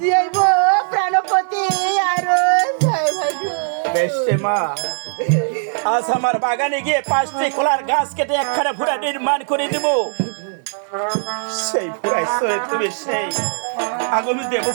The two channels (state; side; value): silent; left; 66 dB below the other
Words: যাইব প্রাণপতি আরো বেশে মা। আজ আমার বাগানে গিয়ে 5টি কলার গাছ কেটে একখানা ভুরা নির্মাণ করে দেব। সেই ভুরাই চলে তুমি সেই আগামী